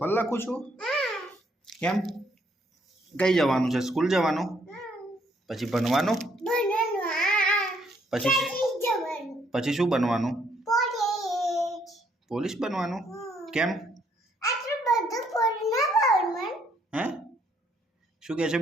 લખું છું. કેમ? કઈ જવાનું છે? સ્કૂલ જવાનું? પછી ભણવાનું? પછી શું બનવાનું? પોલીસ બનવાનું? કેમ? હે? શું કહે છે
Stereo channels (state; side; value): normal; both; correlation 0.69